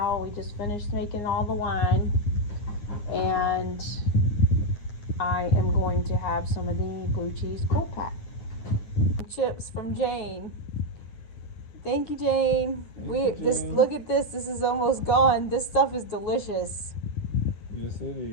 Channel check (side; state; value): right; late; 9.8 ms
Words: we just finished making all the wine, and I am going to have some of the blue cheese cold pack. Chips from Jane. Thank you, Jane. Jane. Look at this. This is almost gone. This stuff is delicious. Yes, it